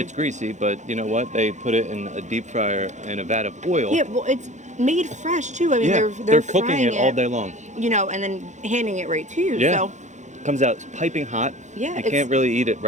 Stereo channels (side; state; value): left; late; 0.35 ms